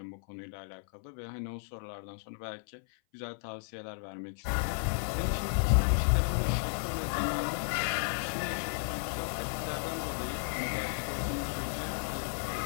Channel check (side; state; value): right; silent; 55 dB below the other